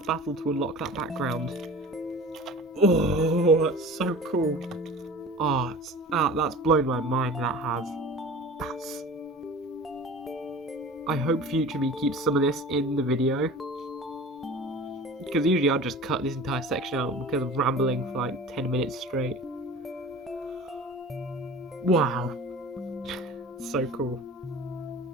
battle to unlock that background. Oh, that's so cool. That's blown my mind, that has. I hope Future Me keeps some of this in the video, because usually I'll just cut this entire section out because I'm rambling for like 10 minutes straight. Wow. So cool.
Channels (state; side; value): normal; both; correlation 0.39